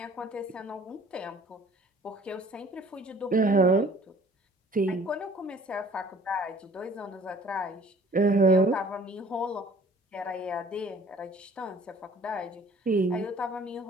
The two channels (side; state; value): both; normal; correlation 0.53